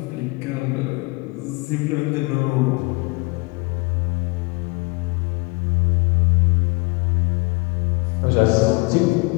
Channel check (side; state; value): right; quieter; 27.4 dB